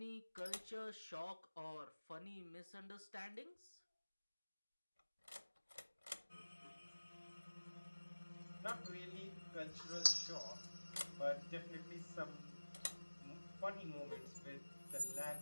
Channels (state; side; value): inverted; both; correlation -1.00